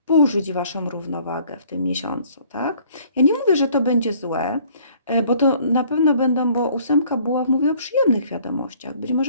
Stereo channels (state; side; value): inverted; both; correlation -0.57